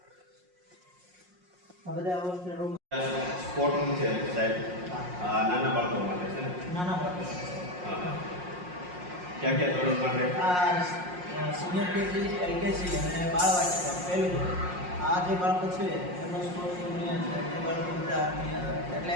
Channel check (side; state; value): left; late; 5.5 ms